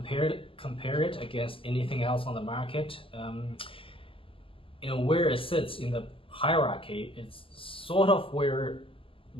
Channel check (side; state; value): right; late; 0.26 ms